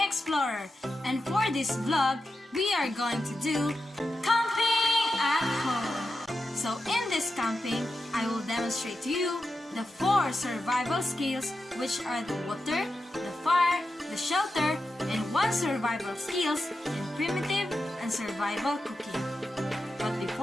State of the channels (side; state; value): both; normal; correlation 0.90